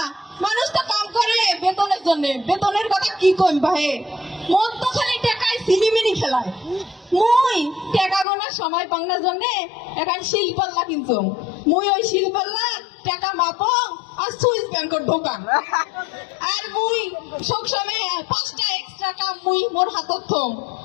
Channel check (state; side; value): drops out; right; at 8.2 s